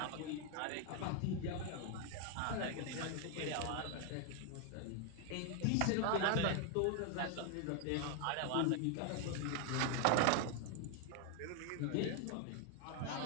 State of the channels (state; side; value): different; both; correlation 0.01